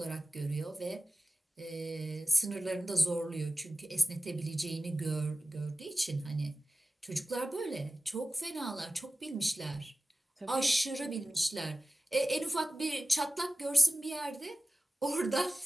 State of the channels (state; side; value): normal; both; correlation 0.96